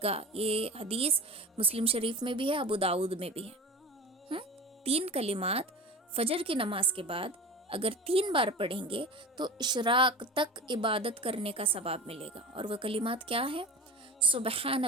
گا. یہ حدیث مسلم شریف میں بھی ہے، ابو داؤد میں بھی ہے. 3 کلمات فجر کی نماز کے بعد اگر 3 بار پڑھیں گے تو اشراق تک عبادت کرنے کا ثواب ملے گا. اور وہ کلمات کیا ہیں؟ سبحان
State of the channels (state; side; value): normal; both; correlation 0.32